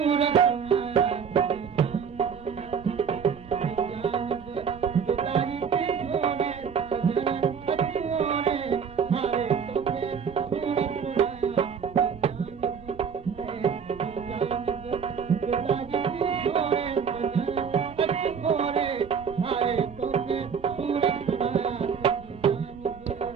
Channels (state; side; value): quieter; left; 6.8 dB